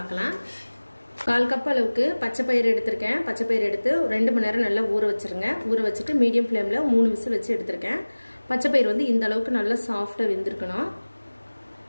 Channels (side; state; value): both; inverted; correlation -1.00